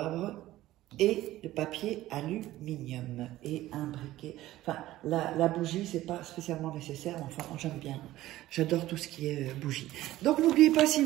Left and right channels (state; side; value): quieter; left; 15.6 dB